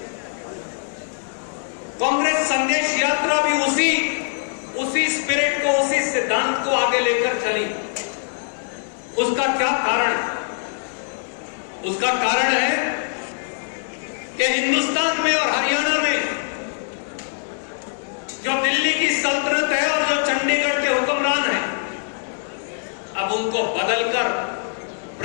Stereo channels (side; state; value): right; silent; digital silence